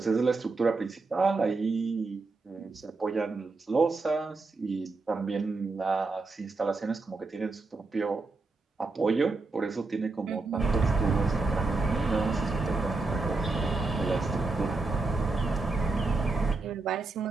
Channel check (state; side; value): quieter; left; 3.7 dB